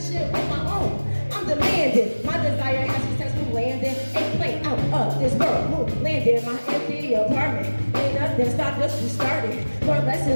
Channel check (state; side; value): inverted; both; correlation -1.00